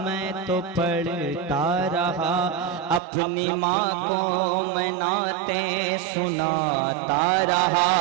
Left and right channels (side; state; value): left; drops out; at 3.0 s